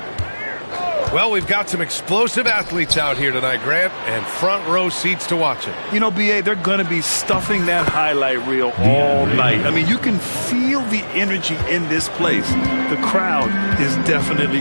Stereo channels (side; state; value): both; inverted; correlation -1.00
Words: Well, we've got some explosive athletes out here tonight, Grant, and front row seats to watch it. You know, B.A., they're going to be stuffing that highlight reel all night. I mean, you can feel the energy in this place. The crowd is definitely